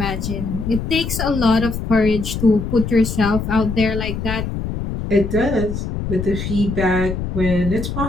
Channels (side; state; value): left; noise; rumble, 4 dB below the sound